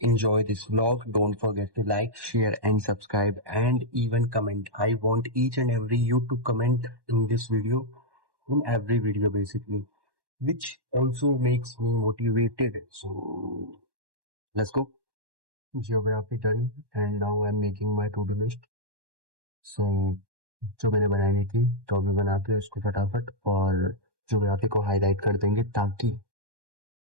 enjoy this vlog. Don't forget to like, share and subscribe and even comment. I want each and every you to comment in this video, in every video basically, which also makes me motivated. So let's go. Geography done and now I'm making my to-do list. So जो मैंने बनाई थी तो अभी बनाते हैं उसको फटाफट और ज्योग्राफी को हाईलाइट कर देंगे ताकि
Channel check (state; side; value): late; left; 1.1 ms